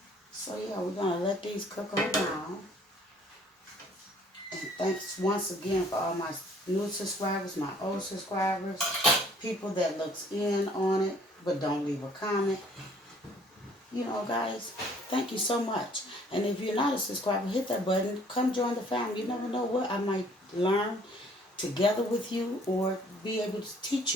So yeah, we're going to let these cook on down. And thanks once again for all my new subscribers, my old subscribers, people that looks in on it but don't leave a comment. You know, guys, thank you so much. And if you're not a subscriber, hit that button. Come join the family. You never know what I might learn together with you or be able to teach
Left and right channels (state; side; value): normal; both; correlation 0.58